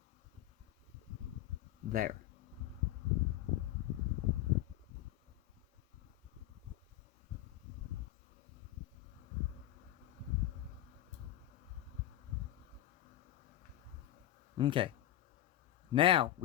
There. Okay. Now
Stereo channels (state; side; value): quieter; right; 13.5 dB